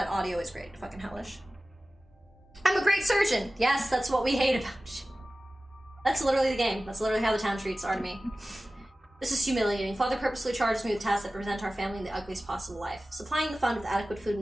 audio is great. Fucking hellish. I'm a great surgeon! Yes, that's what we hate about you. That's literally the game. That's literally how the town treats Artemy. This is humiliating. Father purposely charges me with tasks that present our family in the ugliest possible life. Supplying the fund with adequate food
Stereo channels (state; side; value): normal; both; correlation 0.96